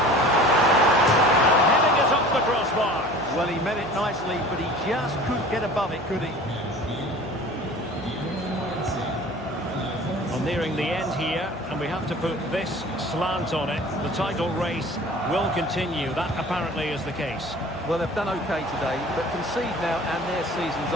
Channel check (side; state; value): left; noise; hum, 20 dB below the sound